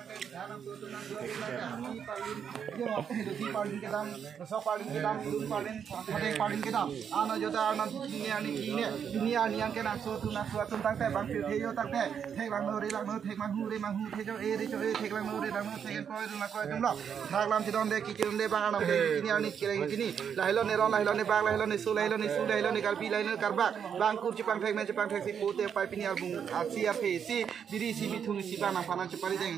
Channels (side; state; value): left; quieter; 7.7 dB